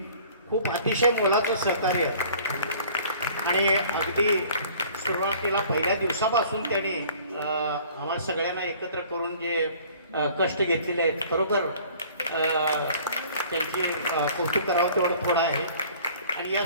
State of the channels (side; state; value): both; inverted; correlation -0.51